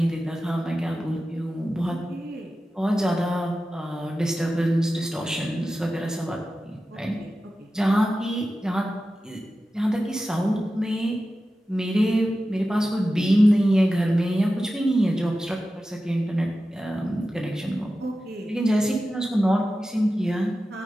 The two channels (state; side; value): normal; both; correlation 0.93